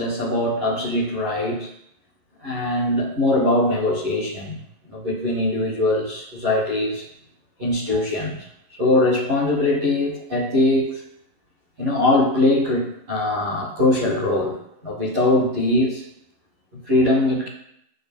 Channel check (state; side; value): late; left; 11 ms